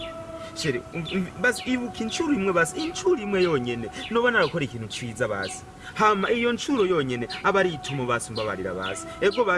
sheri basi ibuka incuro imwe basi incuro imwe yonyene noba narakora ikintu ciza basi hama iyo ncuro yonyene aba ari itumo basi mbabarira basi ego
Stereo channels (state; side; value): identical; both; correlation 1.00